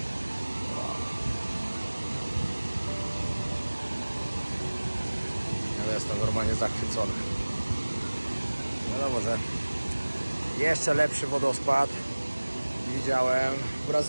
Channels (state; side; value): inverted; both; correlation -1.00